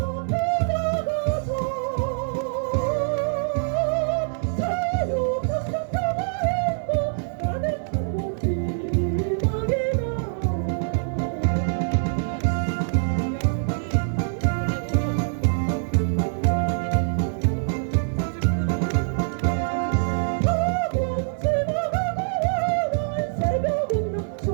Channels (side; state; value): left; silent; digital silence